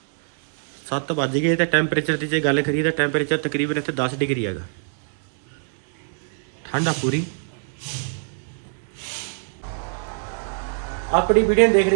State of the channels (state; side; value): silent; left; 63 dB below the other